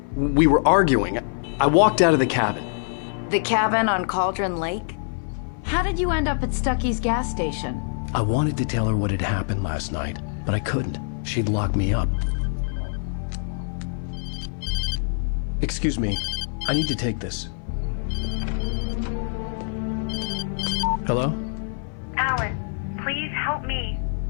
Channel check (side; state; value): right; silent; 62 dB below the other